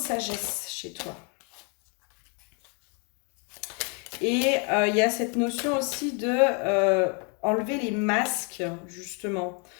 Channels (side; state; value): right; quieter; 36.1 dB